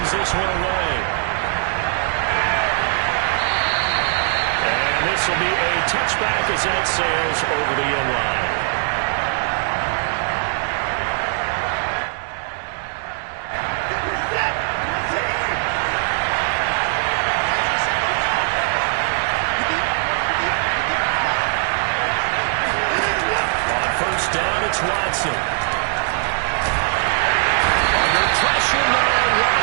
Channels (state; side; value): silent; left; 64 dB below the other